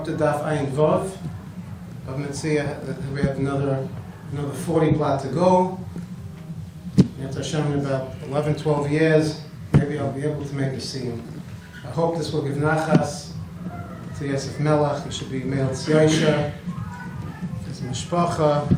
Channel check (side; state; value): both; identical; correlation 1.00